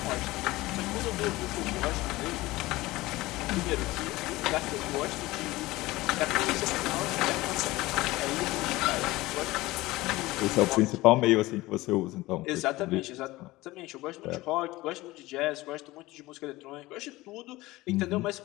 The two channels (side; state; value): right; quieter; 19.2 dB